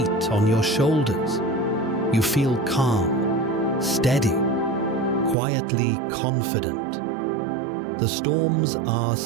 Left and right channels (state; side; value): drops out; left; at 5.4 s